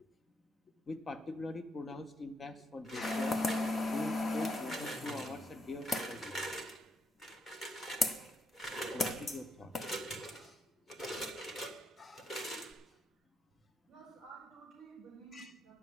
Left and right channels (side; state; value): both; normal; correlation 0.79